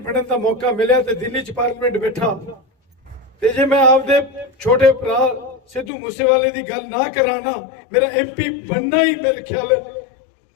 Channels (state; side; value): drops out; right; at 5.9 s